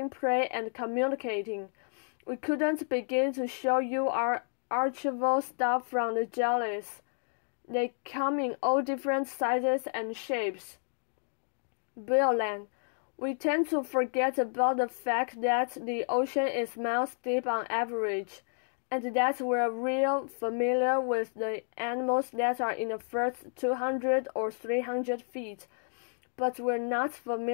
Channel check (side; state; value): right; silent; digital silence